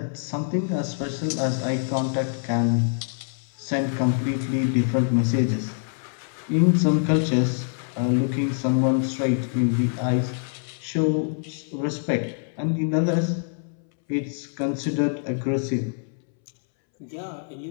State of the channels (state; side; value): silent; right; 62 dB below the other